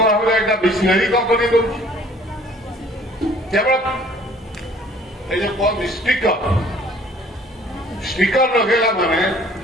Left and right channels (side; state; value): both; normal; correlation 0.54